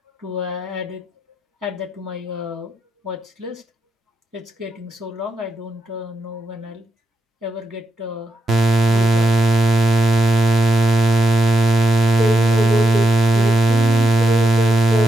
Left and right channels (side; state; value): both; normal; correlation 0.85